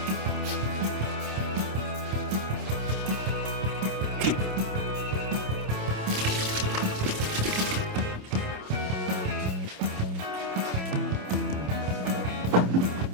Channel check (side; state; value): left; late; 27 ms